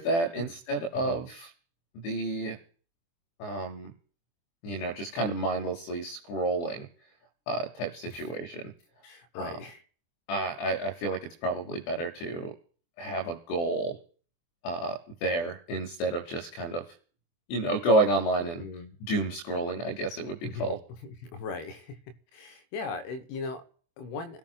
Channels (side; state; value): right; late; 24 ms